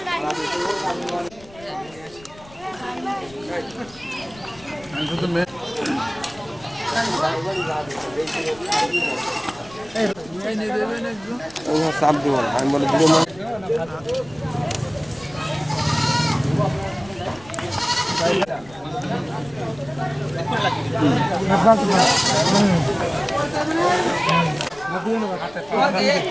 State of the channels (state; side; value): noise; left; rumble, 22 dB below the sound